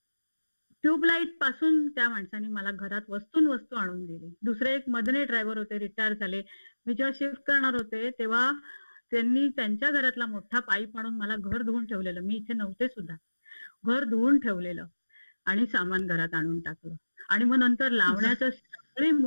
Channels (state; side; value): inverted; both; correlation -1.00